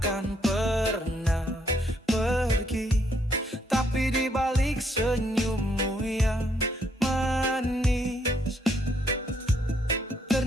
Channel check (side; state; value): both; normal; correlation 0.71